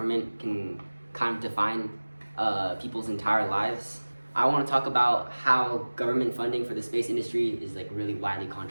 can kind of define people's entire lives, I want to talk about how government funding for the space industry is like really widely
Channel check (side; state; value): both; inverted; correlation -1.00